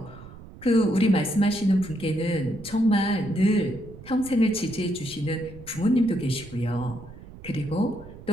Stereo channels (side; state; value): right; noise; rumble, 17 dB below the sound